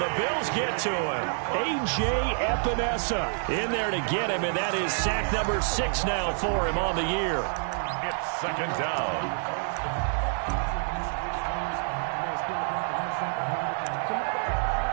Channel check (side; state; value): left; silent; 60 dB below the other